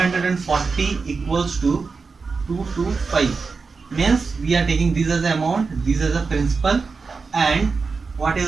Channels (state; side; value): quieter; left; 4.7 dB